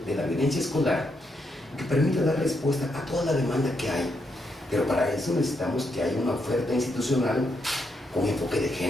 de la violencia escolar que permita dar respuesta a toda la demanda que hay. Pero para eso necesitamos que haya una oferta institucional con enfoque de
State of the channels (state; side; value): normal; both; correlation 0.79